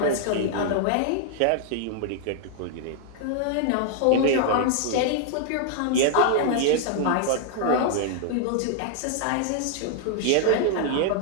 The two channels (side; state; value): both; different; correlation -0.01